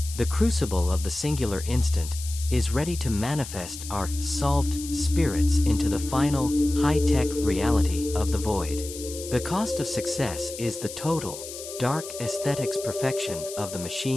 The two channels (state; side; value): noise; left; hiss, 11 dB below the sound